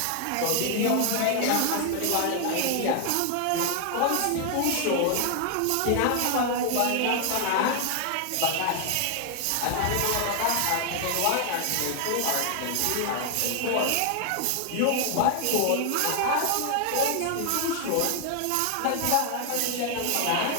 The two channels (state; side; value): different; both; correlation 0.00